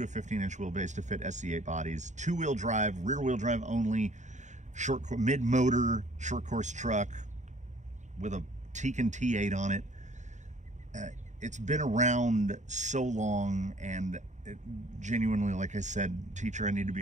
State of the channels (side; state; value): left; late; 0.35 ms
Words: a 15-inch wheelbase to fit SC8 bodies, 2-wheel drive, rear-wheel drive only, mid-motor, short course truck with a Tekin T8 on it. It's been around so long, and genuinely, like I said, teacher, I need to be